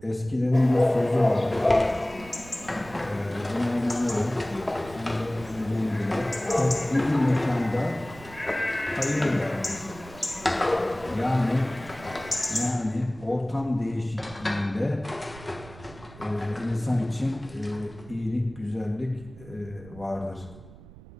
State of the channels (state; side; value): noise; right; rumble, 18 dB below the sound